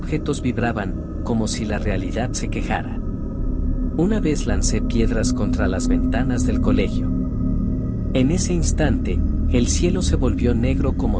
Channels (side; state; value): both; identical; correlation 1.00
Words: vibraban, como si la realidad se quejara. Una vez lancé piedras contra las ventanas del colegio. En ese instante, el cielo se volvió negro